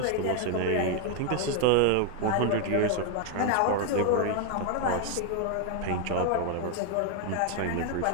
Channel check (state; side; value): different; both; correlation 0.00